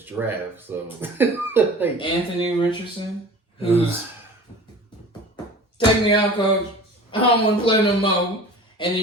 draft. So Anthony Richardson, who's take me out, coach. I don't want to play no more. And then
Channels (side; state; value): both; normal; correlation 0.41